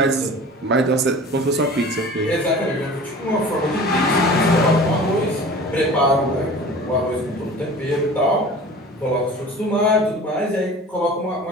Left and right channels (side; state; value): both; normal; correlation 0.41